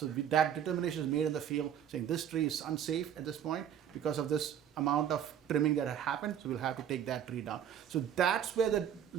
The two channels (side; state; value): left; quieter; 9.3 dB